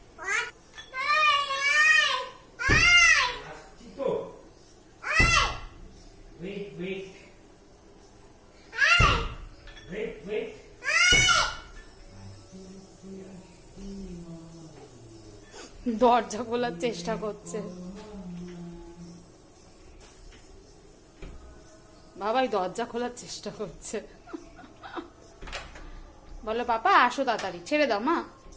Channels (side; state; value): both; identical; correlation 1.00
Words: দরজা খোলার চেষ্টা করছে বাবাই, দরজা খোলার চেষ্টা করছে। বলো পাপা আসো তাড়াতাড়ি, ছেড়ে দাও মা।